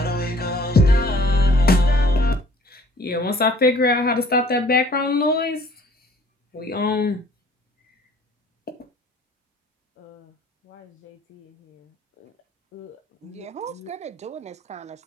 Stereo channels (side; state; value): both; normal; correlation 0.55